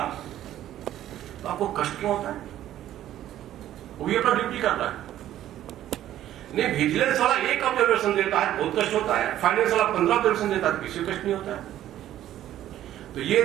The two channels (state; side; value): quieter; left; 12.5 dB